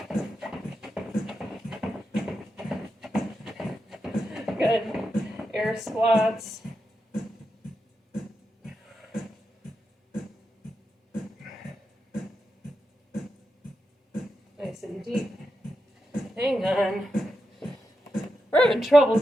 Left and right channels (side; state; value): both; normal; correlation 0.88